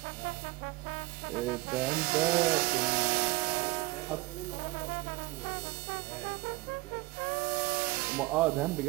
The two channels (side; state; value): left; quieter; 21.6 dB